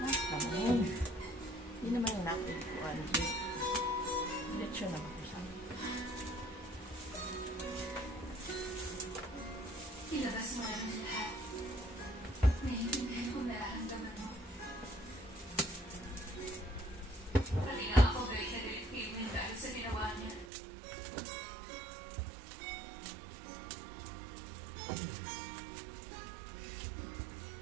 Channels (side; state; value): left; drops out; at 20.5 s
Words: Naman. Hindi naman yung natin ko. Lechon naman ko sa amin. Ilabas mo na rin lahat. Naiintindihan kong nararamdaman mo. Pati nga ako galit na galit kay Win dahil sa ginawa niya.